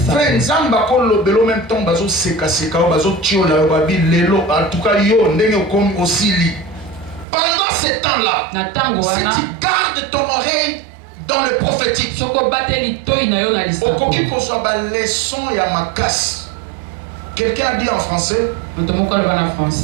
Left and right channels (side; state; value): left; drops out; at 7.2 s